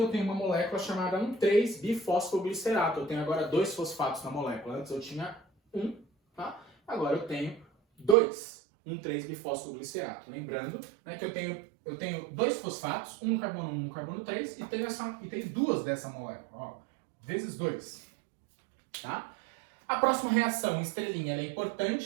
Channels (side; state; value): left; drops out; at 8.2 s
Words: eu tenha uma molécula chamada 1,3-bifosfoglicerato. Eu tenho agora 2 fosfatos na molécula. Antes eu tinha 1, tá? Agora eu tenho 2, 1,3-bifosfoglicerato. Lembrando, né, que eu tenho 2 fosfatos, um no carbono 1, um no carbono 3, e tenho 2 dessa molécula, ó, vezes 2. Tá? A próxima reação, estrelinha, ela é